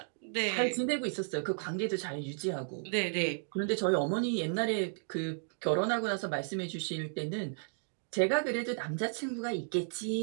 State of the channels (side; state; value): left; silent; digital silence